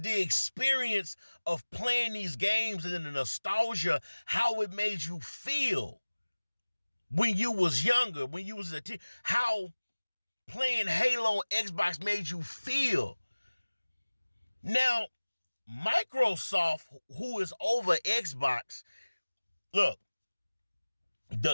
the experience of playing these games and the nostalgia, how it made you feel when you was younger, when you was a teen, how playing Halo on Xbox made you feel. Now, Microsoft, who is over Xbox, look,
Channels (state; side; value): inverted; both; correlation -1.00